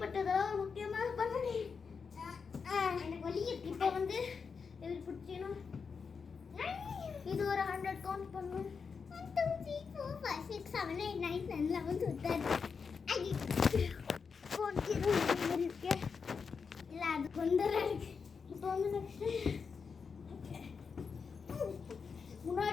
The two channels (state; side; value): quieter; right; 5.6 dB